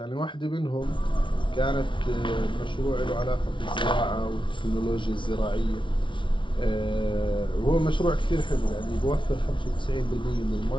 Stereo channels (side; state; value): right; late; 0.24 ms